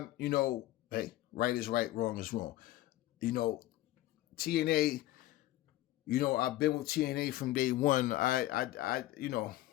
hey, right is right, wrong is wrong. TNA, I've been with TNA from day one. TNA,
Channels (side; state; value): right; quieter; 15.8 dB